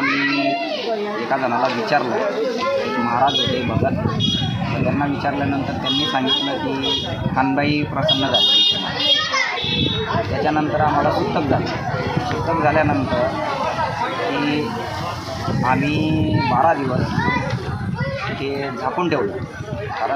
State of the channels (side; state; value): both; identical; correlation 1.00